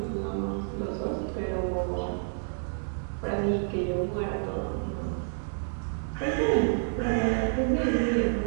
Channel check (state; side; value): silent; left; digital silence